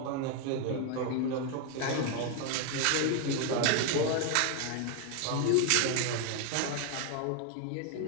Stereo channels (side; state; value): both; different; correlation 0.01